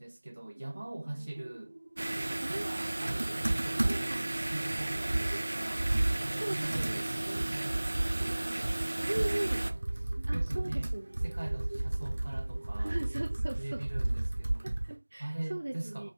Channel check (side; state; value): both; inverted; correlation -1.00